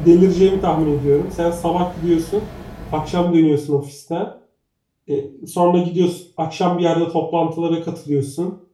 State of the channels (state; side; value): identical; both; correlation 1.00